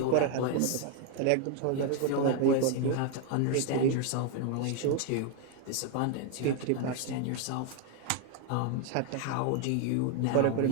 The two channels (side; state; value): both; different; correlation 0.01